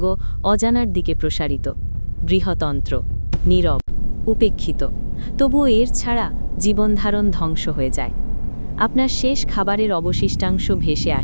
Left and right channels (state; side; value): inverted; both; correlation -1.00